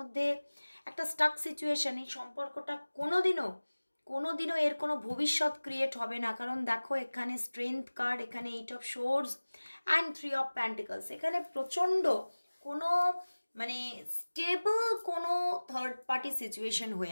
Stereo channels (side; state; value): both; inverted; correlation -1.00